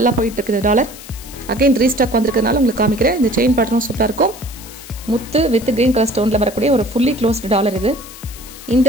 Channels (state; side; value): noise; left; hiss, 16 dB below the sound